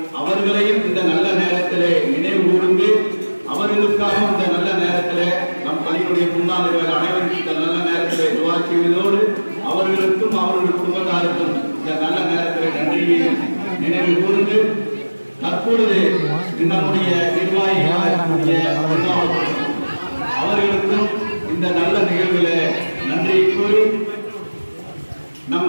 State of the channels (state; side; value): inverted; both; correlation -1.00